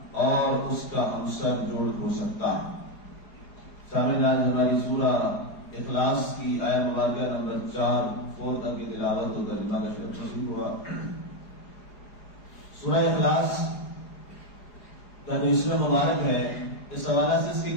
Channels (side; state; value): right; late; 4.8 ms